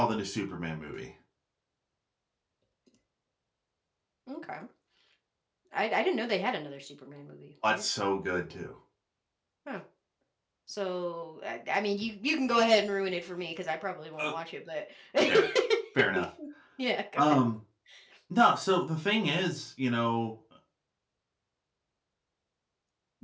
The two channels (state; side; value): identical; both; correlation 1.00